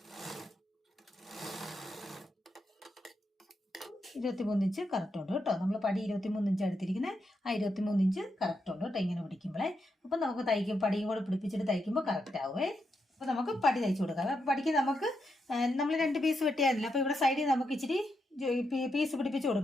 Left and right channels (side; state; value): both; normal; correlation 0.83